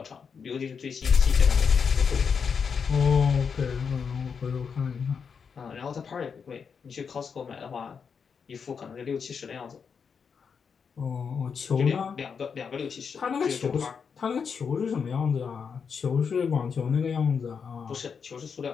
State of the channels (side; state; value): right; quieter; 6.2 dB